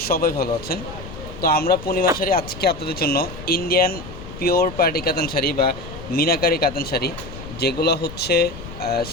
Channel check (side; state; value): left; noise; rumble, 13 dB below the sound